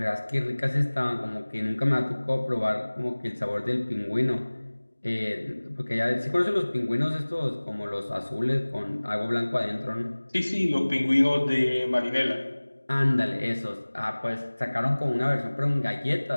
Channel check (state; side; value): inverted; both; correlation -1.00